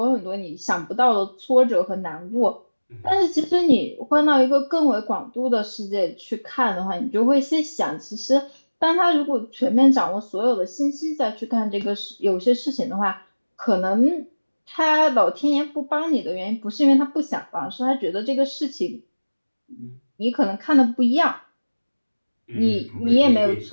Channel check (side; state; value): both; inverted; correlation -1.00